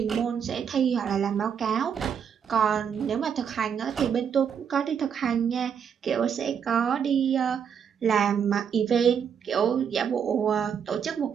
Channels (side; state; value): left; quieter; 7.6 dB